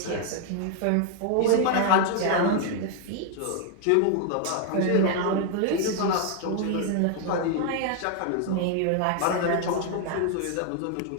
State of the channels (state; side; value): different; both; correlation 0.00